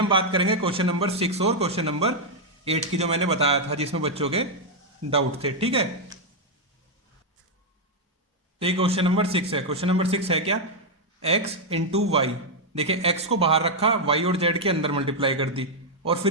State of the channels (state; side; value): normal; both; correlation -0.01